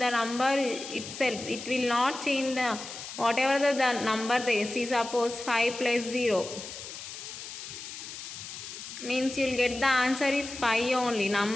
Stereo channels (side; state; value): left; noise; hiss, 10 dB below the sound